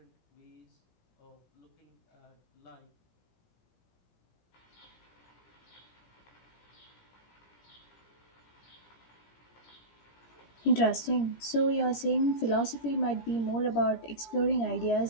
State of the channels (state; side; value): late; right; 17 ms